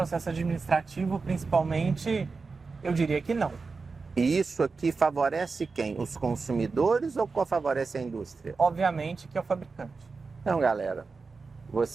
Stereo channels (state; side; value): quieter; left; 4.4 dB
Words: administrativo, principalmente, eu diria que não. E isso aqui favorece quem? Os consumidores ou favorece a indústria? Obviamente que é o fabricante. Então, galera,